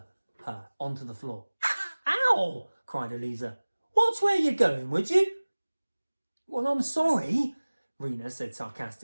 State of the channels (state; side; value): inverted; both; correlation -1.00